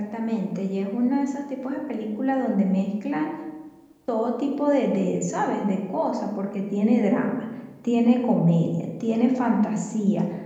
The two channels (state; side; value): identical; both; correlation 1.00